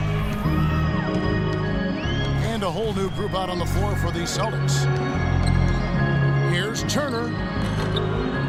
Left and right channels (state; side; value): identical; both; correlation 1.00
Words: And a whole new group out on the floor for the Celtics. Here's Turner.